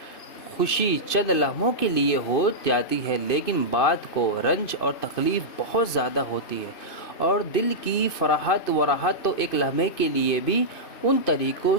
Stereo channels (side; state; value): right; late; 2.6 ms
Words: خوشی چند لمحوں کے لیے ہو جاتی ہے، لیکن بعد کو رنج اور تکلیف بہت زیادہ ہوتی ہے، اور دل کی فرحت و راحت تو ایک لمحے کے لیے بھی ان طریقوں